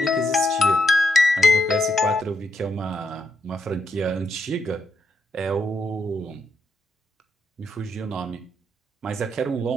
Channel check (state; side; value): normal; both; correlation 0.79